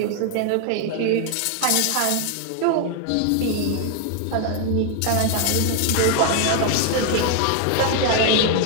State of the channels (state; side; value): different; both; correlation 0.00